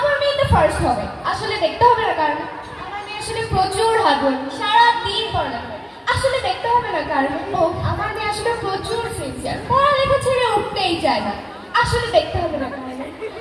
মেয়ে তো ফার্স্ট হবে আসলে দেখতে হবে না কারণ আমার মেয়ে আসলে প্রচুর হার্ডওয়ার্ক সারাদিন পড়ালেখা করে আসলে দেখতে হবে না কারণ ও আমার মেয়ে আসলে প্রচুর সিনসিয়ার পড়ালেখা ছেড়ে উঠতেই চায় না আসলে দেখতে হবে না কারণ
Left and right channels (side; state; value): both; identical; correlation 1.00